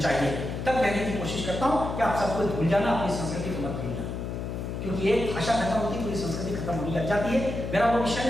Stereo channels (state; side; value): noise; left; hum, 5 dB below the sound